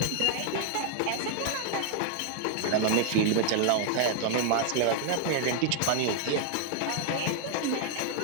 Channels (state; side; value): different; both; correlation 0.00